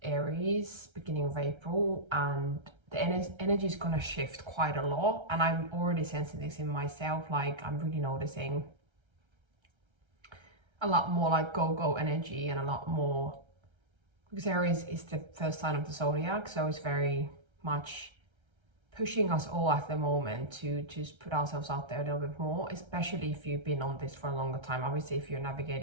Aries beginning of April, and the energy is going to shift quite a lot, and I'm already sensing this in myself. Like, I'm really noticing a lot more like go energy, and a lot more, because Aries is the first sign of the zodiac, so it's very much pushing us all at the moment to just put ourselves out there a little bit more, especially if you've been on this for a longer time. Obviously, if you're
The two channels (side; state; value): left; late; 1.3 ms